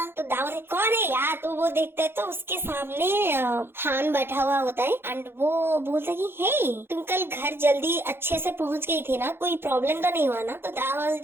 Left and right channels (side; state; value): left; late; 0.11 ms